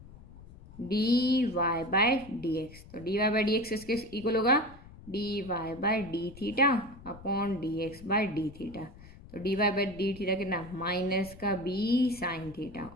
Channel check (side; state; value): left; noise; rumble, 19 dB below the sound